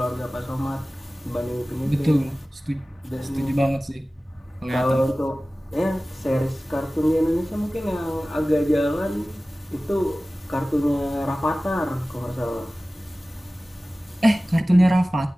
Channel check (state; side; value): normal; both; correlation 0.97